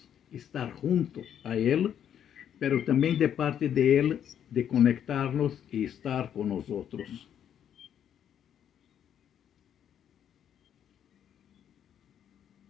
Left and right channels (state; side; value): quieter; right; 9.4 dB